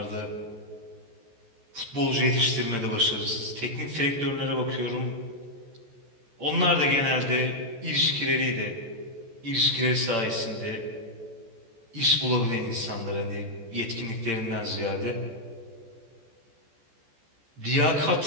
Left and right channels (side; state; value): left; late; 14 ms